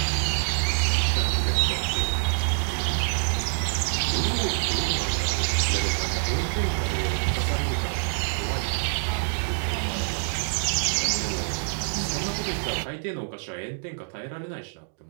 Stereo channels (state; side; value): silent; left; digital silence